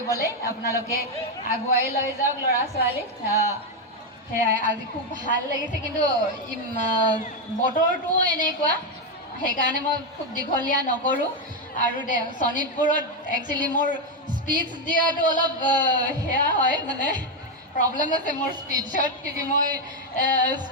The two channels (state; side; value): normal; both; correlation 0.05